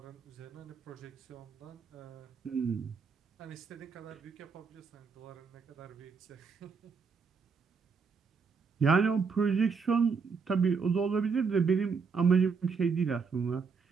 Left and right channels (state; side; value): quieter; left; 5.4 dB